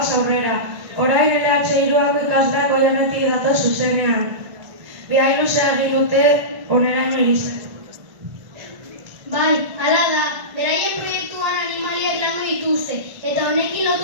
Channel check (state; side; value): late; left; 1.5 ms